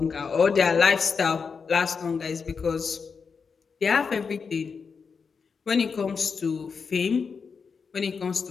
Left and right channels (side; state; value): right; quieter; 5.5 dB